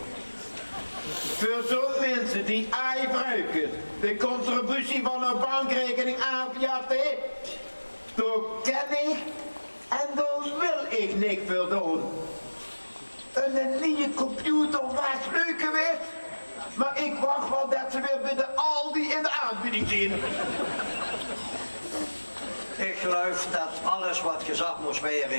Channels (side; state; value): both; inverted; correlation -1.00